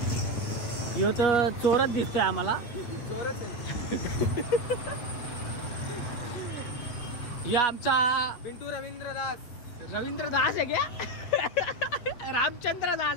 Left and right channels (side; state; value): right; late; 8.2 ms